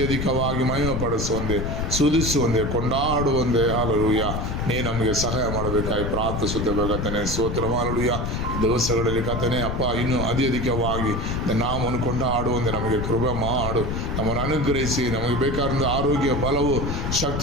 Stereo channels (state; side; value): noise; left; rumble, 2 dB below the sound